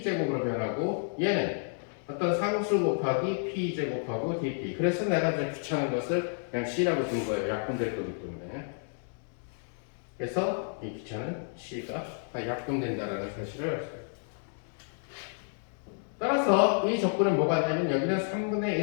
변하고 얘는 어떤 상수 곱하기 p제곱하고 dp. 그래서 내가 이제 귀찮은 것을 그냥 c라고 둔 거예요. 약분될 거기 때문에. 그래서 이 귀찮은 c가 다 약분된다는 사실을 알 수 있어요. 따라서 이 조건은 뭐가 되냐면 여기는 3분의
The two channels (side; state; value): right; silent; 57 dB below the other